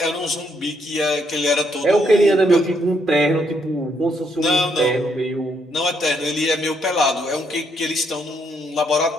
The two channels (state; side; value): normal; both; correlation 0.74